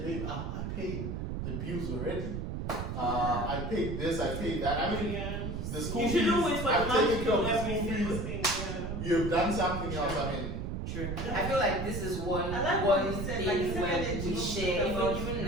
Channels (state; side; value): noise; right; rumble, 4 dB below the sound